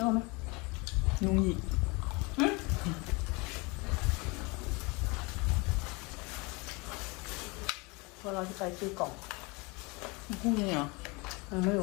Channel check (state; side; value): quieter; right; 27.5 dB